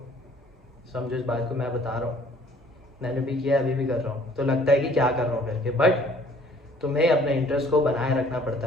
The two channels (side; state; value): both; normal; correlation 0.57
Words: समझो इस बात को मैं बता रहा हूँ, मैंने भी किया, अभी भी कर रहा हूँ, तो लगता है कि क्या कर रहा हूँ करके, बट तुम्हें अपने इंटरेस्ट को बनाए रखना